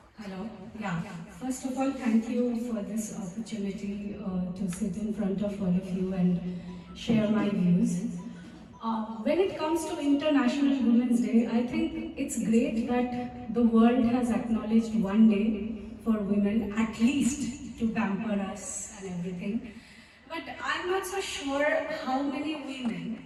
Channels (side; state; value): both; identical; correlation 1.00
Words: Hello. Yeah. First of all, thank you for this opportunity to sit in front of all of you and share my views. When it comes to International Women's Day, I think it's great that the world has acknowledged one day for women, at least to pamper us and everything. But I'm not so sure how many